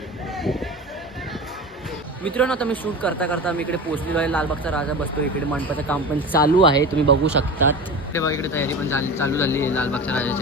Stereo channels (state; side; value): normal; both; correlation 0.30